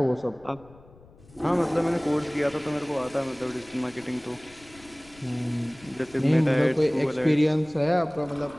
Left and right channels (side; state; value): left; noise; rumble, 24 dB below the sound